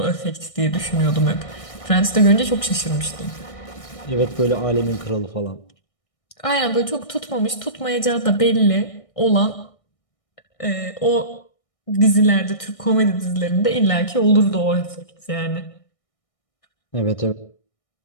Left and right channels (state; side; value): late; right; 1.6 ms